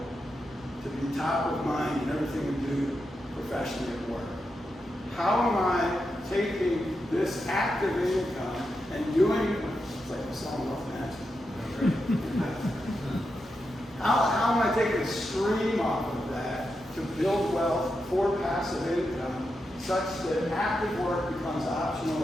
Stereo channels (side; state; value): both; normal; correlation 0.87